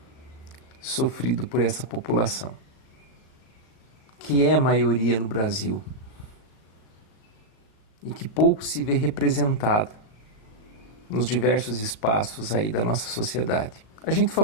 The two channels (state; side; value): late; right; 37 ms